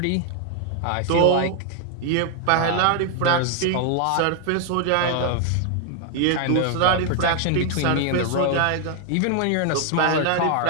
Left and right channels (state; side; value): different; both; correlation 0.00